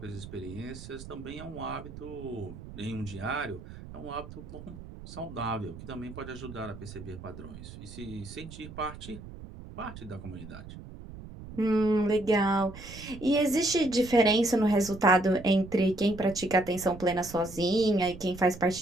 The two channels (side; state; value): right; noise; rumble, 14 dB below the sound